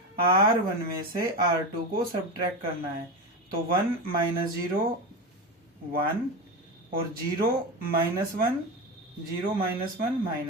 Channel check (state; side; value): normal; both; correlation 0.20